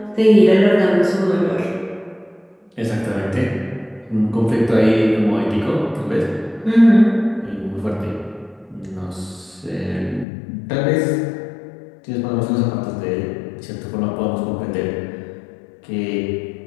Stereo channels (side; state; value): right; drops out; at 10.2 s